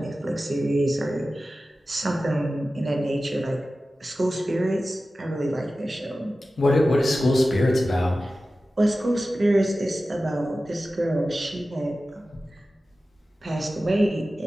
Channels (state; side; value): normal; both; correlation 0.95